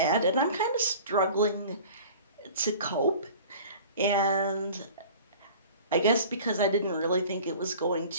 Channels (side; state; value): both; inverted; correlation -0.43